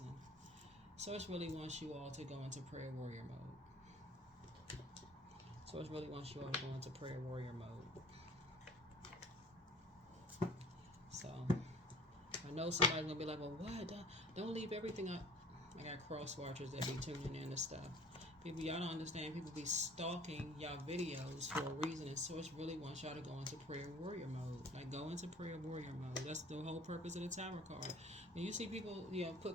Source really wants you all to go into prayer warrior mode. Source really wants you all to go into prayer warrior mode. So, I know somebody's going to be like, well, what? Don't leave everything up. I got cross watchers that be tuning in to stuff. People, y'all don't understand. People be stalking y'all videos for a reason, and Source really wants y'all to go into prayer warrior mode. Like, go into prayer warrior mode. That's the whole purpose of the Tower card. When you see people,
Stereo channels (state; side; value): normal; both; correlation 0.48